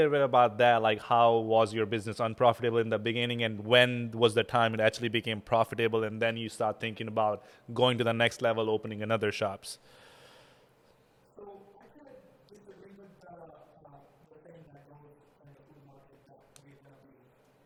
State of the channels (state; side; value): identical; both; correlation 1.00